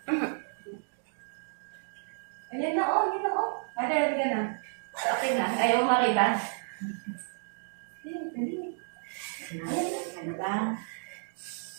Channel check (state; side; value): silent; left; digital silence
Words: Ayan na, oh, yun na, oh. Ada ka na. Okay na. Ayaw mo makita. Nakasin ka na ba?